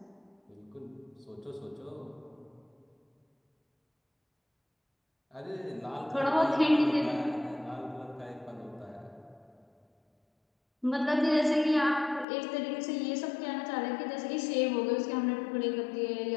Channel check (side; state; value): right; drops out; at 12.2 s